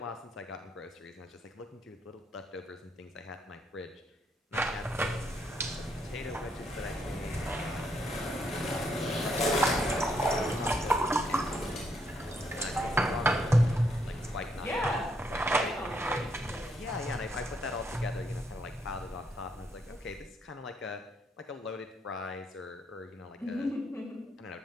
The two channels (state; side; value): normal; both; correlation 0.75